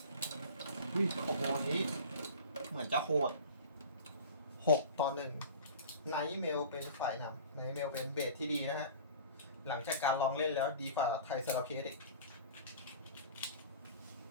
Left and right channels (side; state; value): both; inverted; correlation -0.40